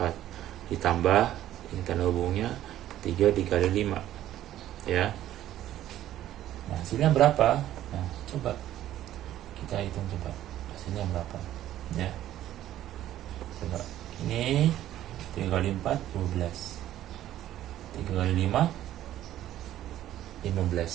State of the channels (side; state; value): left; quieter; 12.8 dB